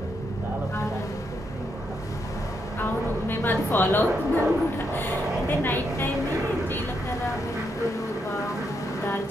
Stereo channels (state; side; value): normal; both; correlation 0.79